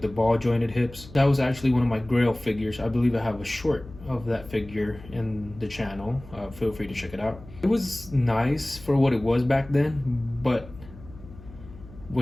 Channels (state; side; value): noise; left; hum, 18 dB below the sound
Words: ball jointed hips. That was actually one of my grail figures. I believe I have a short of that figure in the channel. Feel free to check it out. It was nice for what it was back then, but